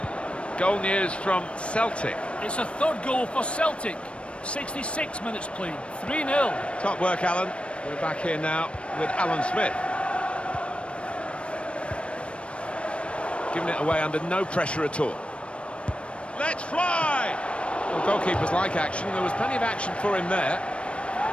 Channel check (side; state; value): right; late; 0.060 ms